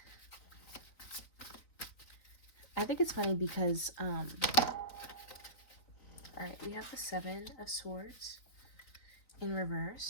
I think it's funny because, all right, we have the Seven of Swords in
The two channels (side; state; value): right; late; 3.9 ms